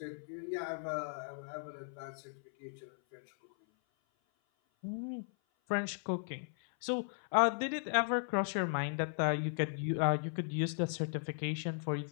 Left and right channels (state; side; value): silent; right; 53 dB below the other